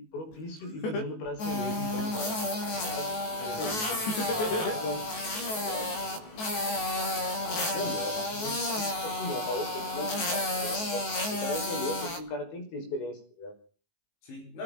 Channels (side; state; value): right; late; 19 ms